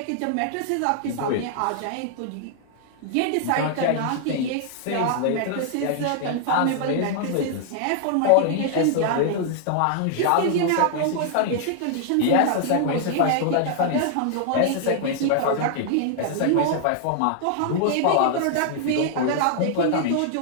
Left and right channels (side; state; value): both; different; correlation -0.01